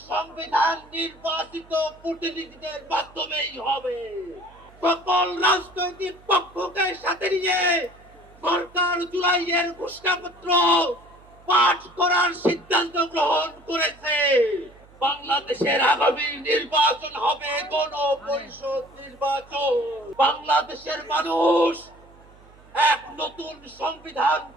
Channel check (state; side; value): noise; right; hum, 25 dB below the sound